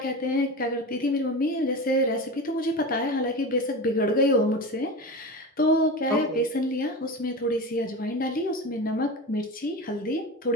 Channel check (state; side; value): normal; both; correlation 0.26